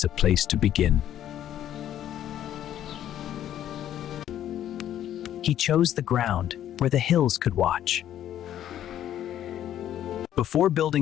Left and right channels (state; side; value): quieter; right; 11.3 dB